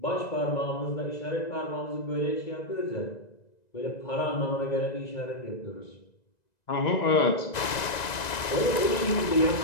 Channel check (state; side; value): late; right; 1.9 ms